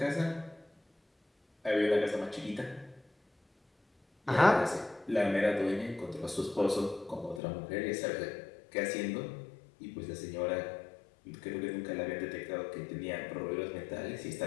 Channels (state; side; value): drops out; right; at 7.4 s